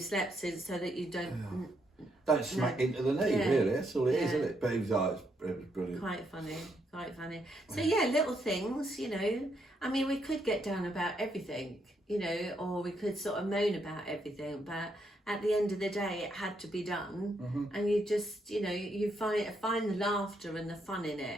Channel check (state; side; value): normal; both; correlation 0.76